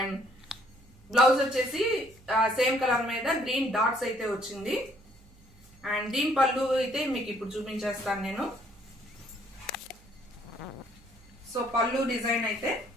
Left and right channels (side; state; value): right; noise; hum, 26 dB below the sound